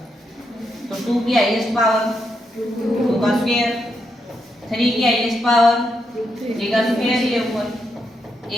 तो 2 की हाईएस्ट पावर 2 का स्क्वायर, 3 की हाईएस्ट पावर 3 का स्क्वायर, ये ऊपर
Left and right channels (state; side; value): normal; both; correlation 0.81